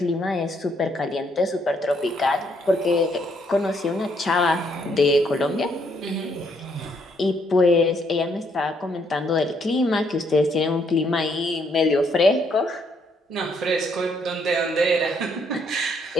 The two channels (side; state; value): both; normal; correlation 0.71